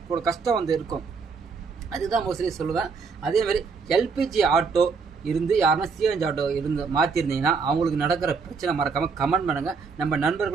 கூட கஷ்டம் வந்து இருக்கும். அதுதான் மோஸ்ட்லி சொல்லுவேன். அதேமாதிரி எல்பிஜி ஆட்டோ இருந்து யாருன்னா சிஎன்ஜி ஆட்டோ இருந்து மாற்றிருந்தீங்கன்னா அவங்களுக்கு நடக்கிற பிரச்சனை மறக்காமல் கமெண்ட் பண்ணுங்கள், நம்ம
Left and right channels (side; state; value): left; quieter; 5.1 dB